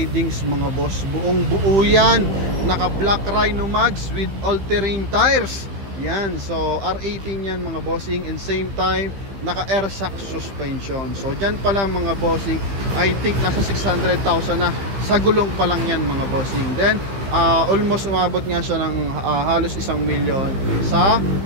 mga boss, buong buo yan. Naka black rhino mags with all-terrain tires. Yan. So R18 yan mga bossing. And same time naka air shock suspension. So dyan pala mga bossing, I think nasa 600,000 na sa gulong pa lang yan mga bossing. Then almost umabot nga siya ng halos 1 million sa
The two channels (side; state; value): left; late; 15 ms